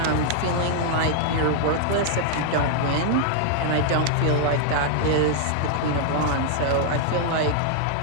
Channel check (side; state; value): both; different; correlation -0.01